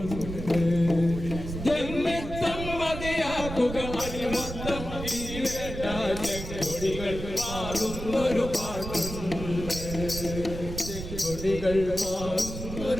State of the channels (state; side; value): noise; right; rumble, 8 dB below the sound